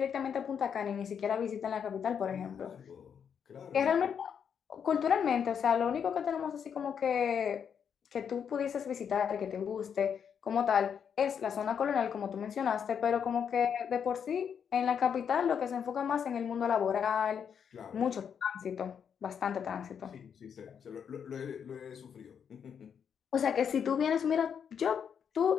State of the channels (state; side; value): quieter; right; 7.5 dB